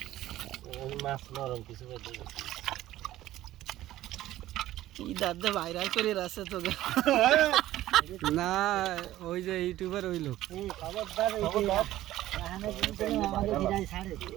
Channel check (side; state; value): left; quieter; 14.6 dB